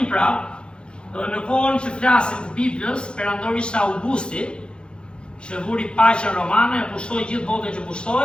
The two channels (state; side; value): late; right; 0.054 ms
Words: prapë, në kohën që flasim të Biblës, perandori ishte Augusti, që vuri paqen romane, e pushtoi gjithë botën që